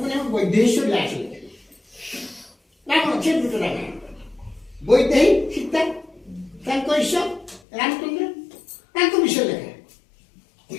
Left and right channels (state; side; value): drops out; right; at 7.6 s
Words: ଆମେ ବୈଦେହୀଶ ବ୍ୟାସ ଲେଖିଲେ ରାମ ଅଛି ଦୁଟ ରାମାୟଣ ବୈଦେହୀ ସୀତା ତାଙ୍କ ଈଶ ରାମଚନ୍ଦ୍ର ତାଙ୍କ ବିଷୟ ଲେଖା